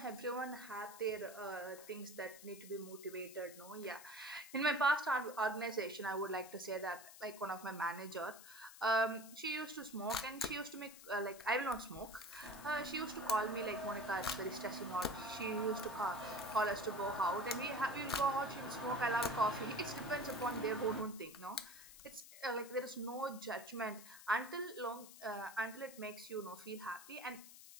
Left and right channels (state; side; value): noise; left; hiss, 16 dB below the sound